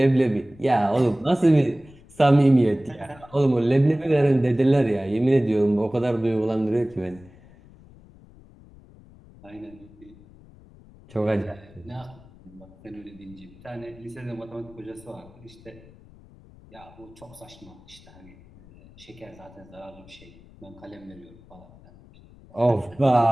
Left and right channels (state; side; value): noise; left; rumble, 23 dB below the sound